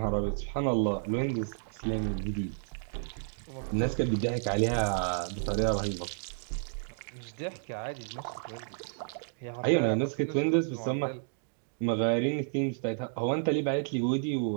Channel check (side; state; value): left; silent; digital silence